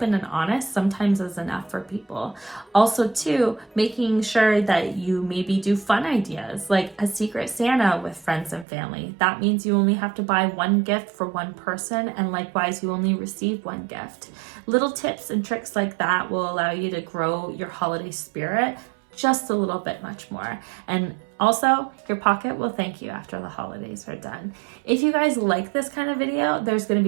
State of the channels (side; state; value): left; drops out; at 8.7 s